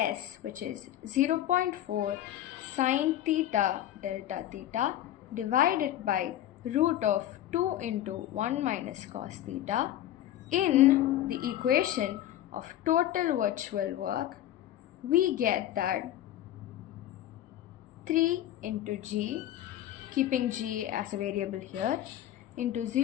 which is 0.4 sine theta delta theta divided by root of 2 into 1 minus cos theta, in the equation of total virtual work, we get that 3 into g, keeping g as a variable here, into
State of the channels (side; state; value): right; quieter; 12.7 dB